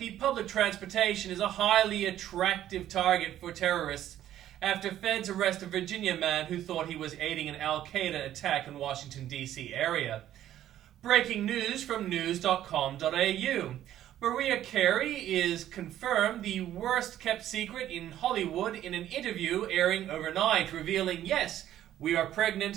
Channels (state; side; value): quieter; left; 12.1 dB